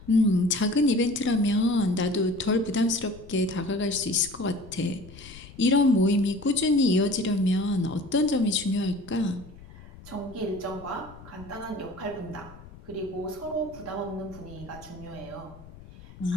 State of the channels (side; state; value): left; noise; rumble, 19 dB below the sound